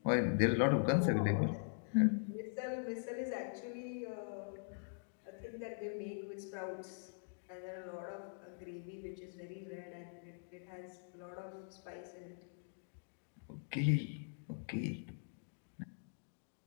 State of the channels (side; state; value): right; silent; digital silence